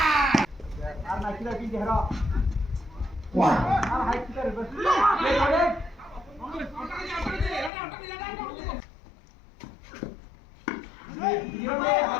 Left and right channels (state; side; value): drops out; right; at 7.7 s